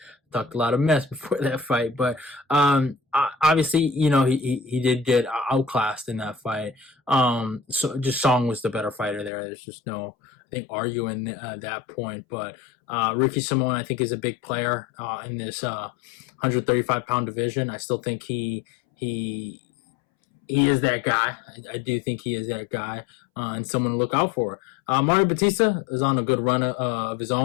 talked a lot of mess before that fight, but obviously, he did get outclassed in that fight. So just Song was the better fighter there. There's just no, I think, arguing that point. But Ricky Simone, I think, is a big player in this 135-pound division. I still think he is that guy. I do think he is that guy, and someone to look out for. Mario Bautista is on a good run of his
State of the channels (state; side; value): drops out; right; at 9.3 s